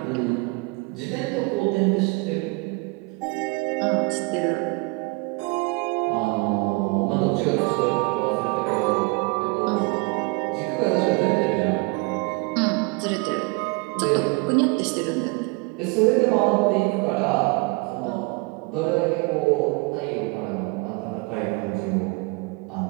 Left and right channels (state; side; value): quieter; left; 27.8 dB